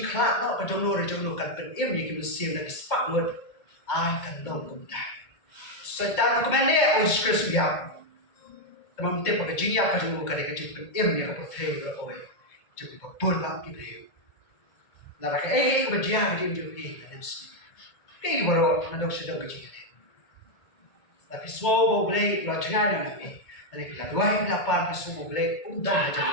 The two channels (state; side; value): late; right; 2.2 ms